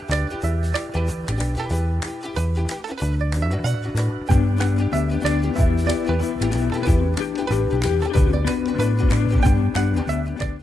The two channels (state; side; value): normal; both; correlation 0.88